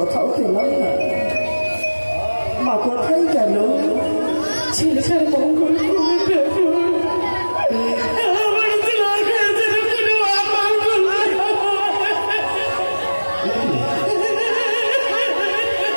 পেলাম না। মা কোথায় গেল? ছেলেটার মঙ্গল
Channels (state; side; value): inverted; both; correlation -1.00